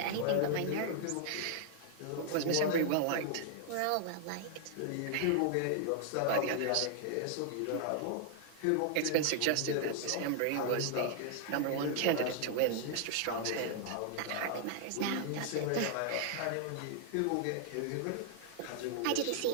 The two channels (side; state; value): both; different; correlation 0.00